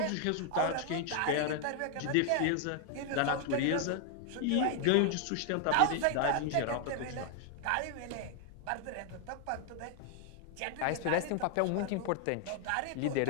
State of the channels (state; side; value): different; both; correlation 0.00